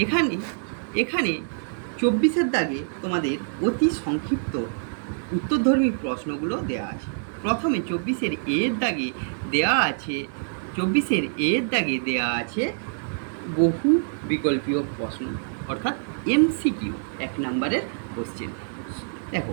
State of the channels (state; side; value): silent; left; 61 dB below the other